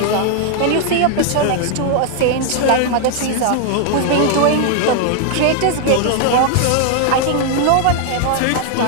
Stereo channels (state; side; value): different; both; correlation 0.00